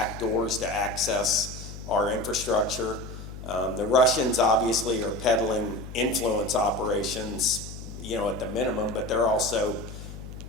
to access our infrastructure. The Russians obviously are peddling influence operations, at the minimum, but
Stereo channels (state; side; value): noise; left; hum, 12 dB below the sound